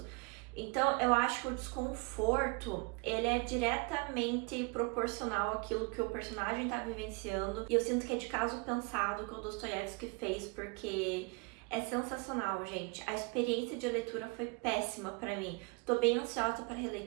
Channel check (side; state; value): left; quieter; 30.7 dB